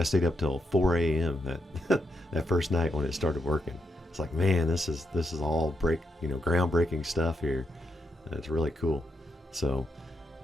stayed up till 4 a.m. that first night when it started working. It's like, man, this is all groundbreaking stuff here. It's really cool. So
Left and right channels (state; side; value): normal; both; correlation 0.82